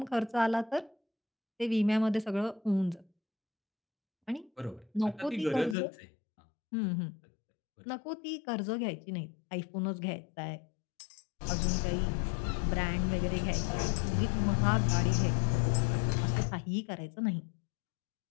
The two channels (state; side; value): drops out; right; at 5.8 s